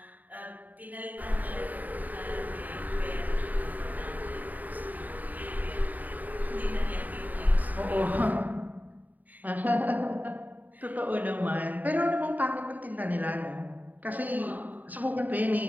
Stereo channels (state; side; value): late; left; 0.081 ms